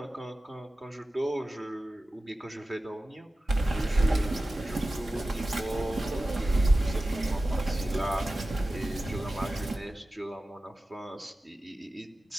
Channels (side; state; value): both; normal; correlation 0.95